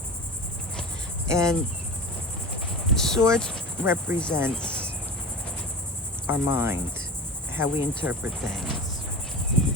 And swords represents our mind, how we interpret things.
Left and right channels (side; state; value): both; normal; correlation 0.30